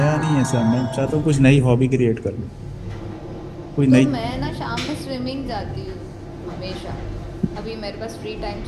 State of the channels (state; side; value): identical; both; correlation 1.00